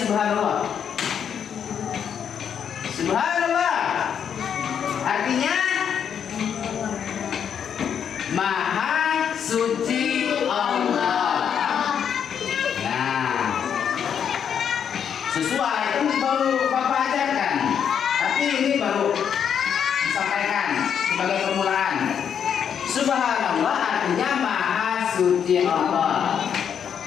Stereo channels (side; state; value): right; quieter; 8.0 dB